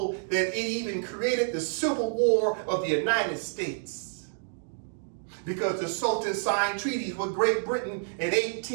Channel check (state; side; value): silent; left; digital silence